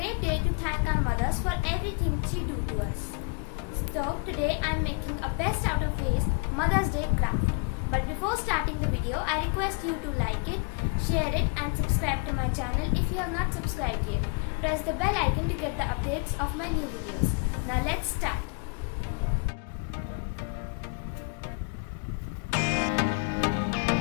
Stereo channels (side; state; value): right; quieter; 34.2 dB